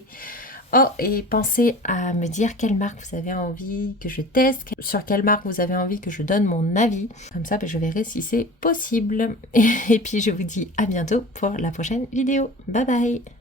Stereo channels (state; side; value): normal; both; correlation 0.38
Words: Oh, et pensez à me dire quelle marque vous avez envie que je teste, sur quelle marque vous avez envie que je donne mon avis. Comme ça, je verrai si c'est possible. Et puis, je vous dis à bientôt pour la prochaine vidéo. Bye bye!